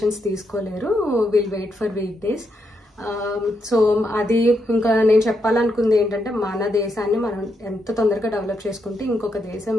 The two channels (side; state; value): both; normal; correlation 0.81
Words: తీసుకోలేరు. Will wait for weekdays. So అది ఇంకా నేను చెప్పాలనుకుంది ఏంటంటే మన దేశాన్ని మనం ఎంత తొందరగా డెవలప్ చేసుకుంటే ఇంకొక దేశం